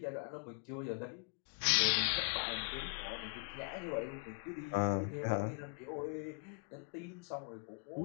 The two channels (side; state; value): right; quieter; 39.6 dB